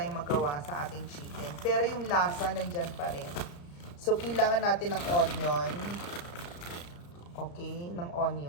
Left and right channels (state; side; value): late; right; 34 ms